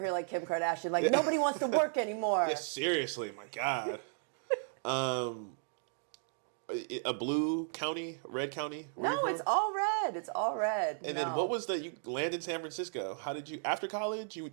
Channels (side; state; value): left; silent; digital silence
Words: like Kim Kardashian, like nobody wants to work anymore. Yeah, seriously, my God. A blue county, red county. No, it's all red. It's all red. And then what was you landed in San Francisco? How did you after college? You